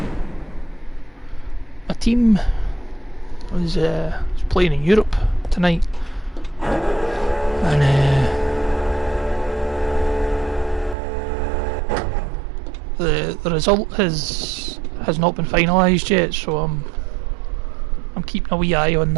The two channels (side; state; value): left; drops out; at 11.0 s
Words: team was playing in Europe tonight, and the result has not been finalised yet, so I'm keeping a wee eye on